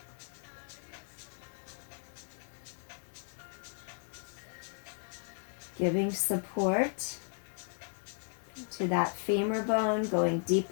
Giving support to that femur bone, going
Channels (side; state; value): right; silent; 54 dB below the other